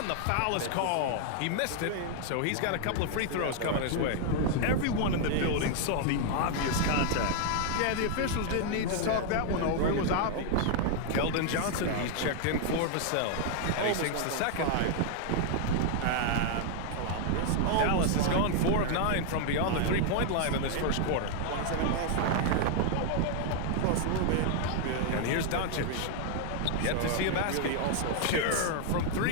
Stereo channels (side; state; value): both; different; correlation 0.00